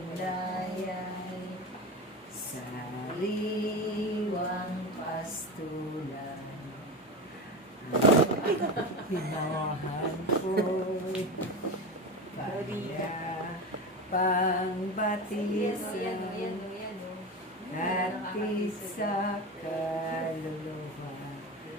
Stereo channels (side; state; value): both; normal; correlation 0.24